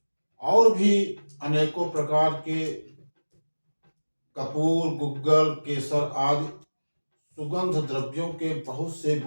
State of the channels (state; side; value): inverted; both; correlation -1.00